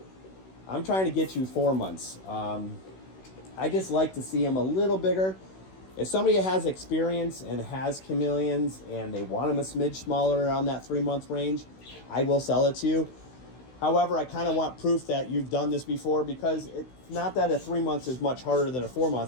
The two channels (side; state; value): right; late; 16 ms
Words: I'm trying to get you 4 months. I just like to see them a little bigger. If somebody has experience and has chameleons and they want them a smidge smaller around that 3 month range, I will sell it to you. However, I kind of want proof that you've done this before, because it's not that a 3 months is much harder than a 4